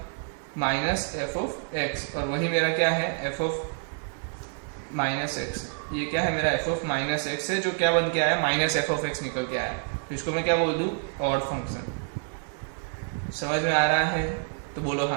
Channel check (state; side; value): silent; left; 60 dB below the other